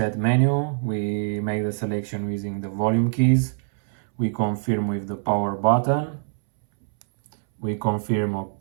menu. We make the selection using the volume keys. We confirm with the power button. We confirm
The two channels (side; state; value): left; silent; 62 dB below the other